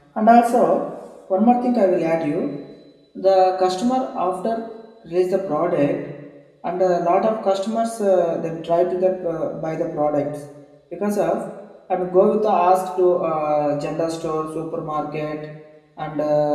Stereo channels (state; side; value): identical; both; correlation 1.00